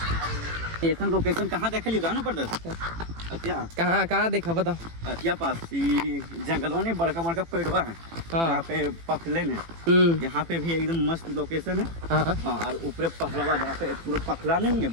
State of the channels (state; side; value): late; left; 18 ms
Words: लोकेशन कहाँ देखा लिया ना पड़ता था? कहाँ देखा बता? अतिया पास जंगलों में बड़का बड़का पेड़वा है। हाँ। यहाँ पे पखले ने यहाँ पे भी एकदम मस्त लोकेशन है। हाँ। और ऊपर पखलवा जहाँ पे पूरा पखला नहीं है